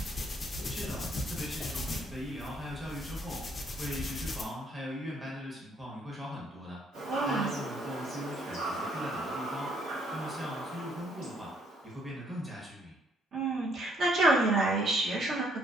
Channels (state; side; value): normal; both; correlation 0.67